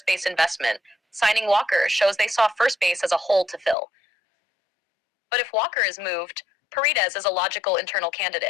base investment. Signing Walker shows they saw first base as a hole to fill. But if Walker is moved, Paredes is a logical internal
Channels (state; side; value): drops out; right; at 3.8 s